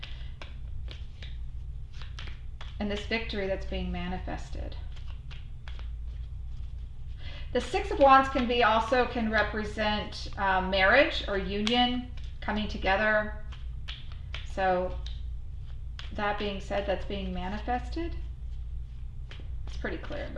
And this victory that's being manifested. The Six of Wands can represent marriage or union, coming together. So that being said, that's being manifested. It's pretty clear,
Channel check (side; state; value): both; identical; correlation 1.00